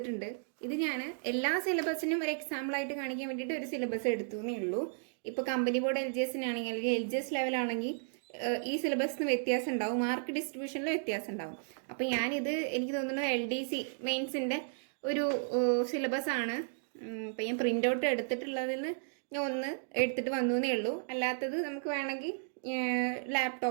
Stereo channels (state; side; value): silent; left; digital silence